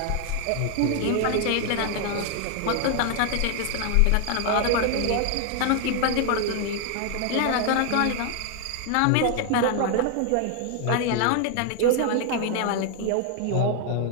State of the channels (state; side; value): different; both; correlation 0.00